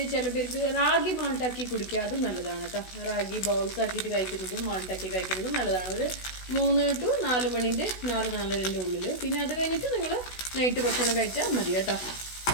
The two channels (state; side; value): late; right; 16 ms